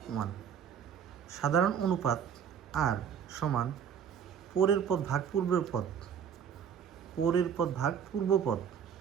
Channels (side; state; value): left; quieter; 8.0 dB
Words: 1। সাধারণ অনুপাত আর সমান পরের পদ ভাগ পূর্বের পদ, পরের পদ ভাগ পূর্ব পদ।